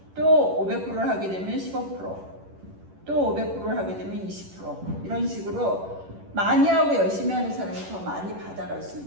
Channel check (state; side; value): late; left; 11 ms